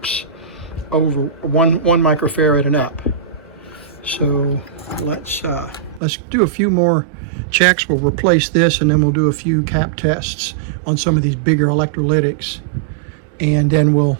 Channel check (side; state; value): left; drops out; at 6.0 s